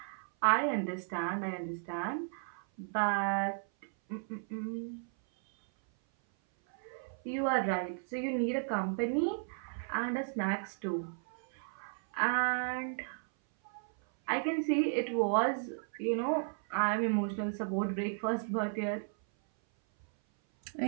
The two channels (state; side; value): silent; left; 55 dB below the other